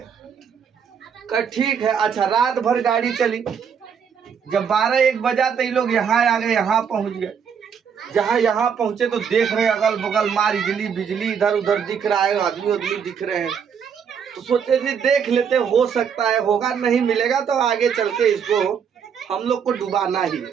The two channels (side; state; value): left; quieter; 7.1 dB